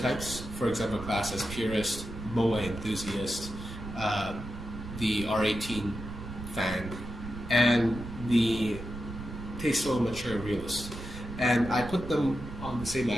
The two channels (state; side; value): noise; right; rumble, 10 dB below the sound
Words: For example, Class as purist, moe enthusiast, the R18 fan, and the tasteful, mature realist. And I put them on the same